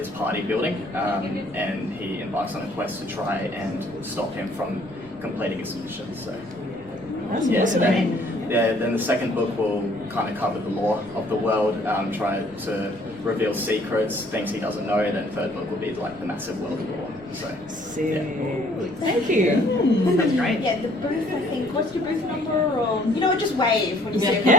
party building, and he embarks on a quest to try and stop him from completing his mission. So, then the second book will kind of cover the lore of the world, try to reveal secrets, things he doesn't know, and then the third book will be like the massive world lore. So, Thank you. That's great. Yeah, the booth, I think, what's your booth number? Or, you know what, just wave when you see it.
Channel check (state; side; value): noise; left; rumble, 23 dB below the sound